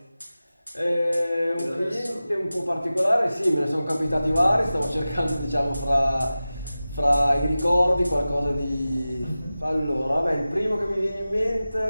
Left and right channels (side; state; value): both; inverted; correlation -0.96